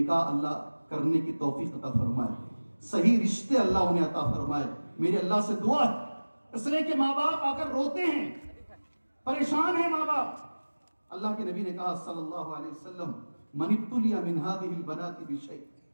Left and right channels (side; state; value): both; inverted; correlation -1.00